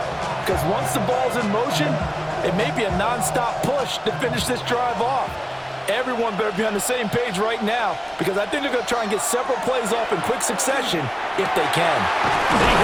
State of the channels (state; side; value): identical; both; correlation 1.00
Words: Because once the ball's in motion, it may be a non-stop push to finish this drive off. Everyone better be on the same page right now, because I think they're going to try and get several plays off in quick succession if they can. He